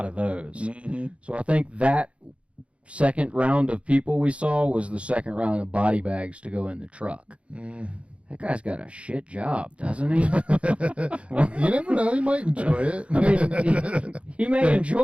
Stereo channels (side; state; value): left; late; 0.061 ms